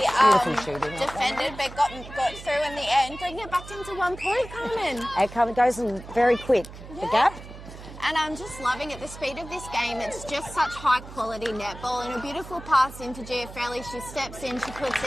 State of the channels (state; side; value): noise; right; hum, 14 dB below the sound